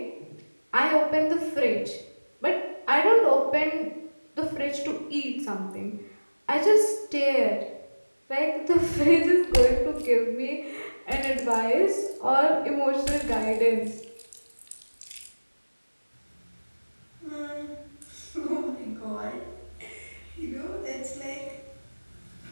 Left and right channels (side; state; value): both; inverted; correlation -1.00